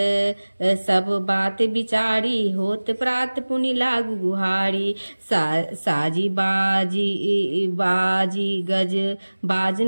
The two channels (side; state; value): both; inverted; correlation -1.00